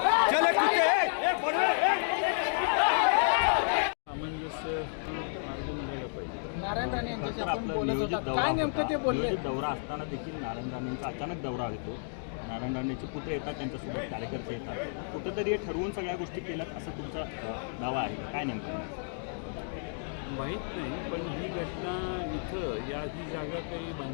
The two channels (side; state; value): right; silent; digital silence